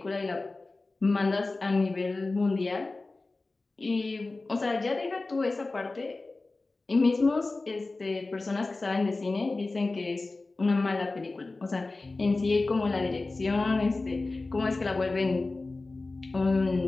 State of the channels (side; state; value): right; quieter; 3.4 dB